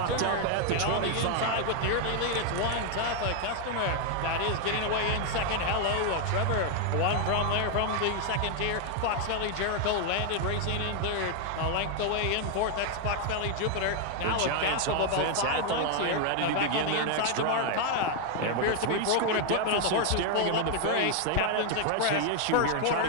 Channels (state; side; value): different; both; correlation 0.00